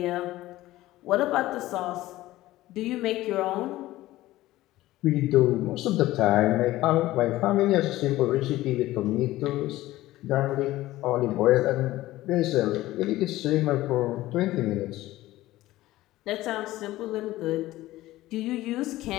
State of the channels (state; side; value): quieter; right; 16.5 dB